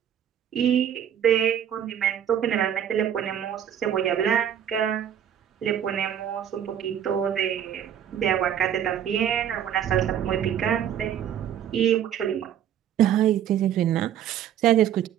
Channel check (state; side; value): quieter; left; 9.8 dB